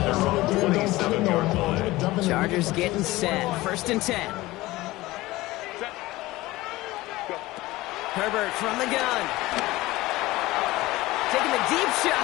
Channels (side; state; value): right; quieter; 18.8 dB